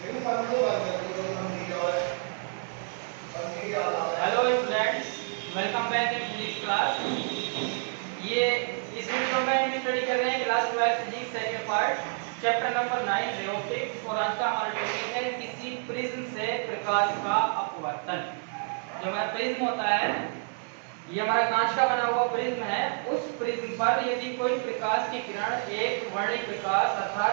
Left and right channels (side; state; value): left; silent; 55 dB below the other